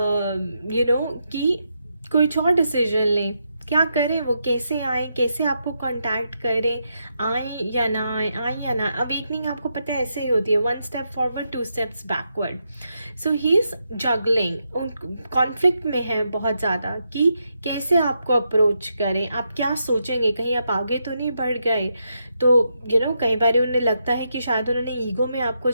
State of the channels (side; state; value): both; inverted; correlation -0.82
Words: कि कोई और डिसीजन लें, क्या करें, वो कैसे आए, कैसे आपको कांटेक्ट करें, आए या ना आए, अवेकनिंग आपको पता है ऐसे ही होती है, 1 step forward 2 steps backward. So he is juggling, conflict में है बहुत ज़्यादा कि कैसे आपको अप्रोच करें, आप क्या सोचेंगे, कहीं आप आगे तो नहीं बढ़ गए. तो कई बार उन्हें लगता है कि शायद उन्होंने ईगो में आपको